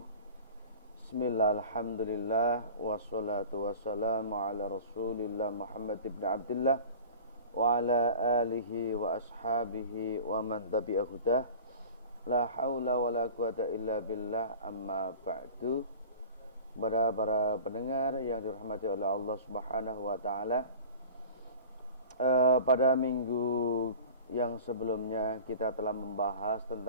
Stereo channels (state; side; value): inverted; both; correlation -0.40